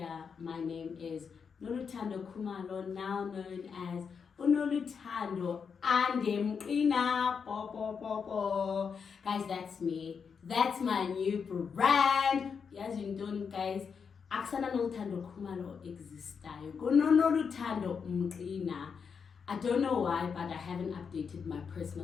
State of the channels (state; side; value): quieter; right; 6.2 dB